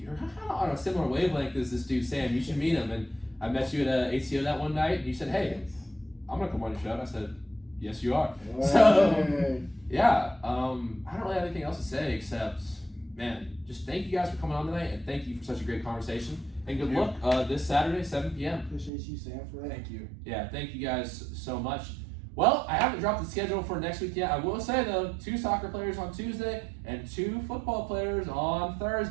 kind of on a similar wavelength as this dude Sam. You should meet him." And I met you at ACO that one night, and you said, "Hey, I'm gonna come on your show." And I said, "Yes, you are." So, yeah, I don't really have anything else to say except, man, just thank you guys for coming on tonight, and thank you for such a great conversation. And good luck this Saturday, 7 p.m. Appreciate you, Sam, for that. Thank you. Yeah, thank you guys so much. Well, I haven't dropped the schedule for next week yet. I will say, though, 2 soccer players on Tuesday and 2 football players on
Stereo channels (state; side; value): drops out; left; at 18.9 s